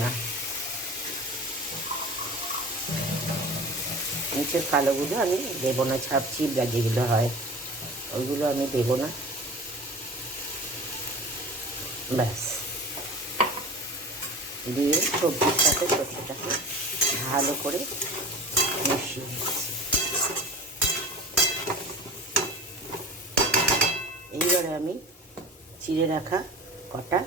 না। নিচের কালোগুলো আমি দেবো না, ছাপচিপড়া যেগুলো হয় ওইগুলো আমি দেবো না। ব্যাস, দিয়ে সবজির সাথে সর্ষেটাকে ভালো করে মিশিয়ে নিচ্ছি। এইবারে আমি চিড়ে রাখা কটা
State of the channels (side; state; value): both; normal; correlation 0.36